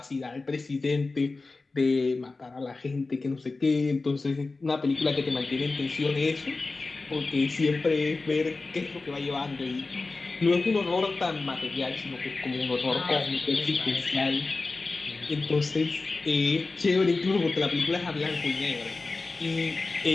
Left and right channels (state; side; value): quieter; right; 3.6 dB